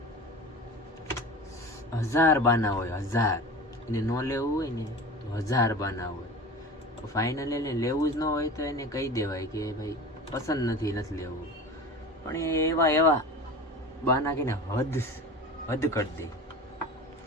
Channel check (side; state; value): both; normal; correlation 0.34